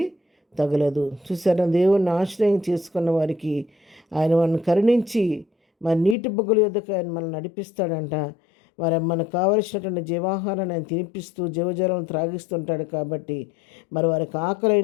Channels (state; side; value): drops out; right; at 6.2 s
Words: తగలదు. చూసారా, దేవుణ్ణి ఆశ్రయం చేసుకున్న వారికి ఆయన మనల్ని కరుణించి మరి నీటి బొగ్గల యొద్దకు ఆయన మనల్ని నడిపిస్తాడంట. మరి మనకు కావలసినటువంటి జీవాహారాన్ని ఆయన తినిపిస్తూ జీవజలం త్రాగిస్తుంటాడు. కాబట్టి మరి వారికి